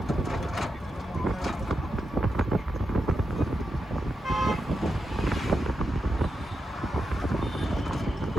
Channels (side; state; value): both; normal; correlation 0.87